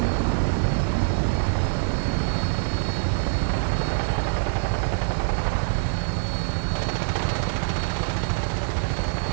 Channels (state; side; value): silent; left; 62 dB below the other